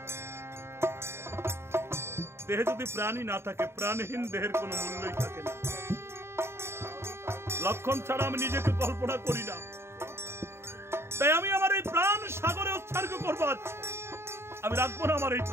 দেহে যদি প্রাণই না থাকে, প্রাণহীন দেহের কোনো মূল্যই থাকে না। লক্ষণ ছাড়া আমি নিজেকে কল্পনা করি না। তাই আমি আমার এই প্রাণ সাগরে উৎসর্গ করবো, আমি রাখবো না আমার এই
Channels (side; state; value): left; late; 0.12 ms